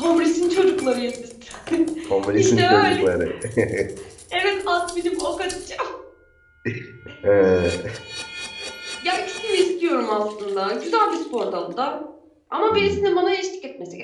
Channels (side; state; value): both; identical; correlation 1.00